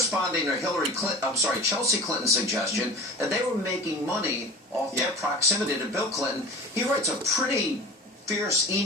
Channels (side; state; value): both; normal; correlation 0.36